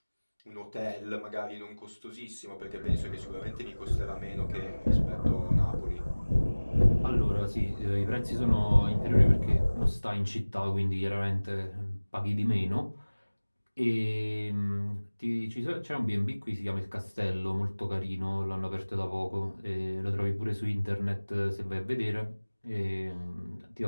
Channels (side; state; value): both; inverted; correlation -1.00